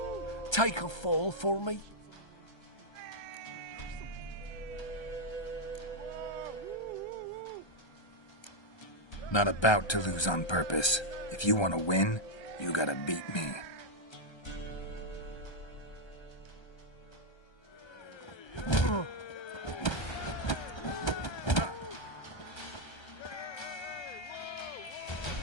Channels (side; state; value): right; late; 1.3 ms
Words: Take a fall for me. Not about to lose on purpose. If you want to win, you gotta beat me.